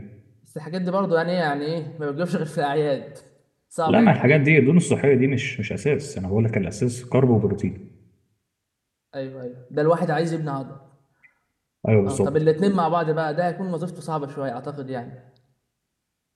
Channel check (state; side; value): identical; both; correlation 1.00